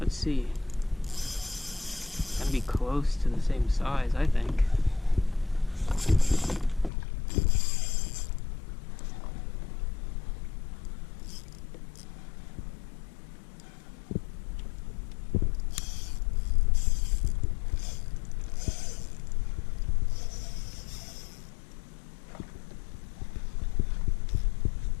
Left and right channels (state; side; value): drops out; right; at 6.9 s